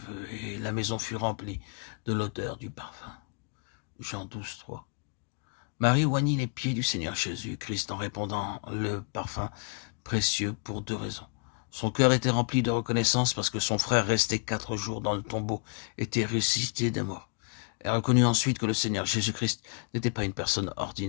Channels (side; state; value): right; quieter; 38.5 dB